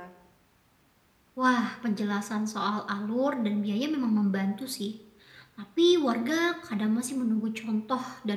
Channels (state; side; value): identical; both; correlation 1.00